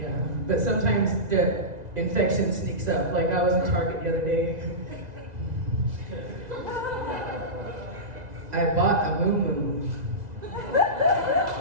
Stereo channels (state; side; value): late; left; 2.0 ms